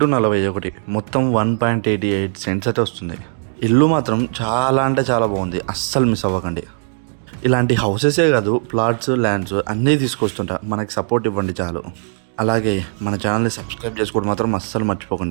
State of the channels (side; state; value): left; silent; digital silence